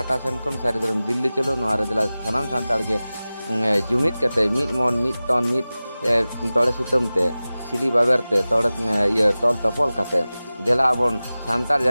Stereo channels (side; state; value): both; inverted; correlation -0.97